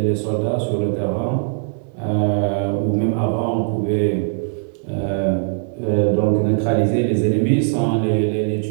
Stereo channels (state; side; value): silent; left; digital silence